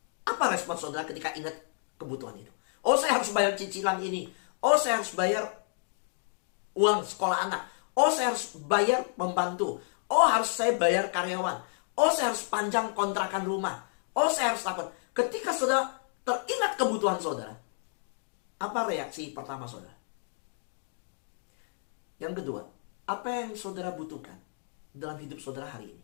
Apa respon saudara ketika ingat kebutuhan itu? Oh, saya harus bayar cicilan ini. Oh, saya harus bayar uang sekolah anak. Oh, saya harus bayar pembantu. Oh, harus saya bayar karyawan. Oh, saya harus panjang kontrakan rumah. Oh, saya harus takut. Ketika saudara teringat kebutuhan saudara, apa reaksi pertama saudara? Yang kedua, apa yang saudara butuhkan dalam hidup saudara hari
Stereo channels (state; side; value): silent; right; 57 dB below the other